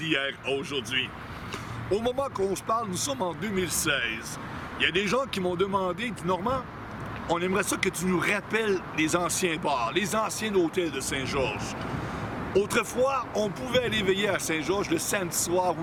à aujourd'hui. Au moment qu'on se parle, nous sommes en 2016. Il y a des gens qui m'ont demandé, Normand, on aimerait ça que tu nous rappelles les anciens bars, les anciens hôtels de Saint-Georges. Autrefois, on pouvait aller veiller à Saint-Georges le samedi soir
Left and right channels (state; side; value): identical; both; correlation 1.00